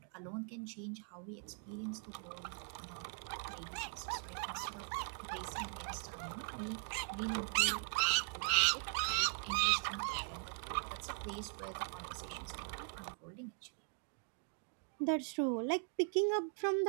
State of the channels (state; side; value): quieter; left; 35.6 dB